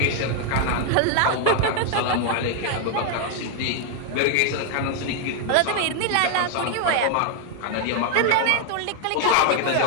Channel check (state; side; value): different; both; correlation 0.01